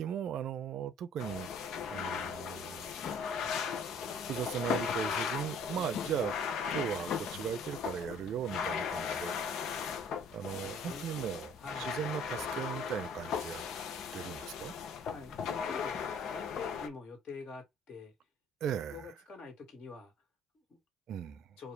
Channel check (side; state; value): both; normal; correlation 0.54